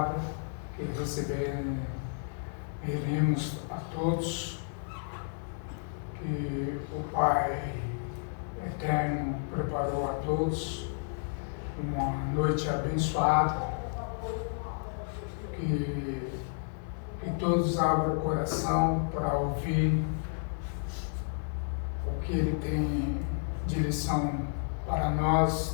que receberemos a todos, que o Pai Eterno preparou a todos uma noite abençoada, que todos abram o coração para ouvir o que Ele tem de lição para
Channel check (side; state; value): right; silent; 57 dB below the other